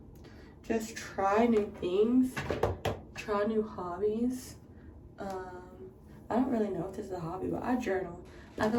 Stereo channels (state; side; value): identical; both; correlation 1.00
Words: just try new things, try new hobbies. I don't really know if this is a hobby, but I journal. I feel